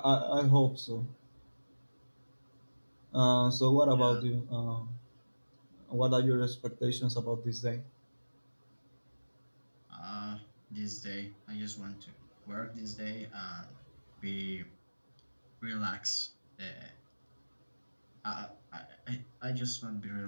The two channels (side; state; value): both; inverted; correlation -1.00